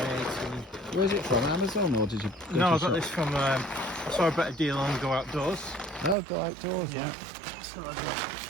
18. Where is it from, Amazon, or did you go No, to I got shop? this from, I saw a better deal on Go Outdoors. No, go outdoors, yeah. So I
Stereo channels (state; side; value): drops out; left; at 6.2 s